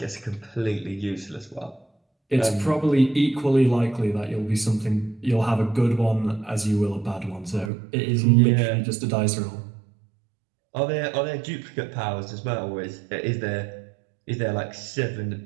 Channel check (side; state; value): left; drops out; at 7.7 s